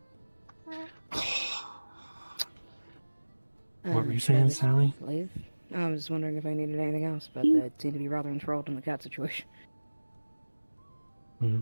What were you saying, Sally? Leave. I was wondering if I needed anything else, but they seem to be rather enthralled in the cat situation.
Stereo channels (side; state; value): both; inverted; correlation -1.00